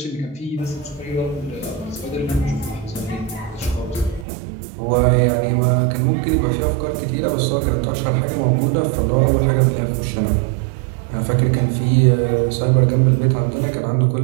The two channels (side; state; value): left; drops out; at 4.2 s